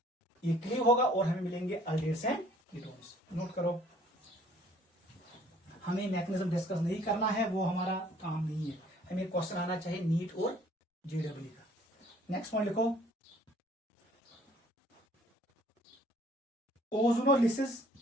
ये क्लीव होगा और हमें मिलेंगे अल्डिहाइड्स एंड कीटोन्स. नोट करो, हमें मैकेनिज्म डिस्कस नहीं करना है, वो हमारा काम नहीं है. हमें क्वेश्चन आना चाहिए नीट और JEE का। नेक्स्ट पॉइंट लिखो, ozonolysis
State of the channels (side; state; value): both; normal; correlation 0.58